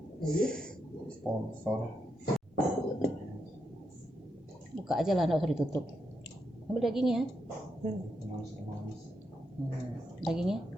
Sponsor. Buka aja lah, nggak usah ditutup. Ambil dagingnya. Dagingnya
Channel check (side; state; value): both; normal; correlation 0.83